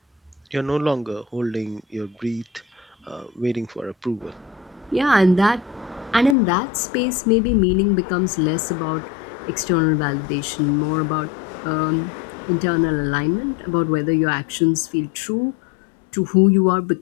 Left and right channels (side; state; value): right; drops out; at 6.4 s